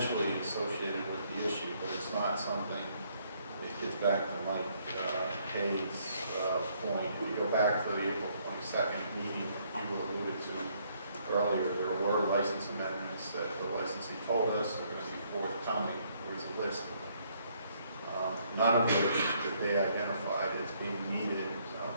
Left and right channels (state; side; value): inverted; both; correlation -0.68